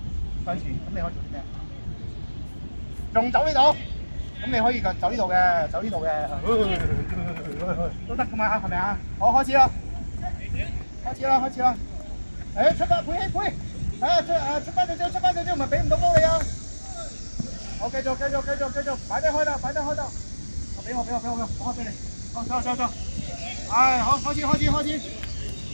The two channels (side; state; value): both; inverted; correlation -1.00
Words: 向前，咁你可以做啲咩？仲走呢度？咁你可以走呢度嘅，都得噶嘛，係咪啊？好，開始啦！出發，佩希，出翻少少，唔係俾唔到波你啊！好，繼續，擺低開啦！俾我，我開俾你。走！好，開始！